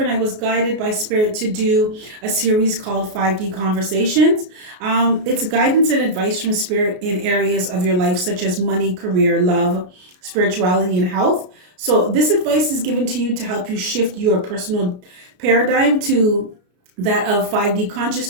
I was guided by Spirit to do a series called 5D Conversations. It's guidance and advice from Spirit in areas of your life, such as money, career, love, spirituality, and health. So this advice is given to you to help you shift your personal paradigm to that of 5D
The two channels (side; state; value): left; late; 33 ms